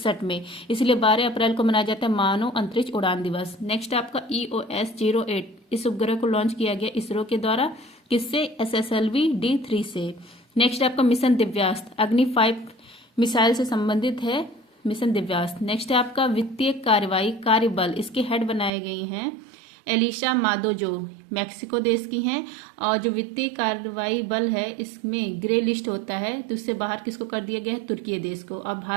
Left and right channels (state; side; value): drops out; left; at 18.7 s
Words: में, इसलिए 12 अप्रैल को मनाया जाता है मानव अंतरिक्ष उड़ान दिवस। नेक्स्ट आपका, EOS-08, इस उपग्रह को लॉन्च किया गया इसरो के द्वारा। किससे? SSLV-D3 से। नेक्स्ट आपका, मिशन दिव्यास्त्र, अग्नि 5 मिसाइल से संबंधित है मिशन दिव्यास्त्र। नेक्स्ट है आपका, वित्तीय कार्रवाई कार्यबल, इसके हेड बनाए गए हैं एलिशा मादो, जो मैक्सिको देश की हैं। और जो वित्तीय कार्रवाई बल है, इसमें ग्रे लिस्ट होता है, तो उससे बाहर किसको कर दिया गया है? तुर्की देश को। अब